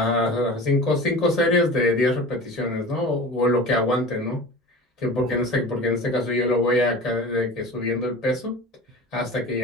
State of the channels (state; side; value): normal; both; correlation 0.36